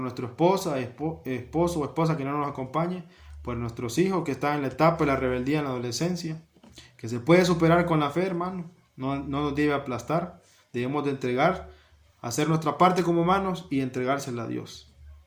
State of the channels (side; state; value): both; identical; correlation 1.00